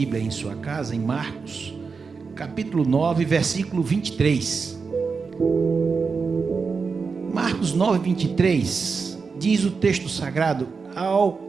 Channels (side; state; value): left; quieter; 5.0 dB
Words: em sua casa, em Marcos, capítulo 9, versículo 23. Marcos 9, 23, diz o texto sagrado: